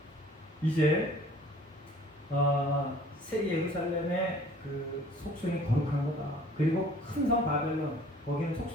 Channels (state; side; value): normal; both; correlation 0.52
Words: 이제 새 예루살렘의 그 속성이 거룩한 거다. 그리고 큰 성 바벨론, 거기는